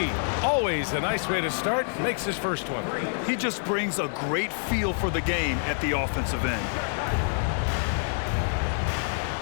Always a nice way to start. Makes his first one. He just brings a great feel for the game at the offensive end.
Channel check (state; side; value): silent; right; digital silence